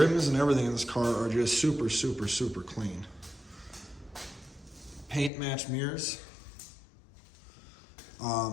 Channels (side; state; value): right; drops out; at 5.3 s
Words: and everything in this car are just super, super, super clean. Paint match mirrors.